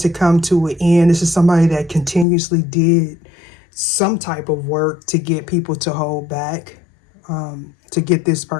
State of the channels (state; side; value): drops out; right; at 2.2 s